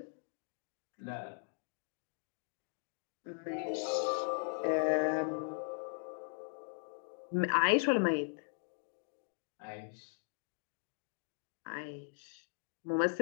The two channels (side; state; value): right; silent; digital silence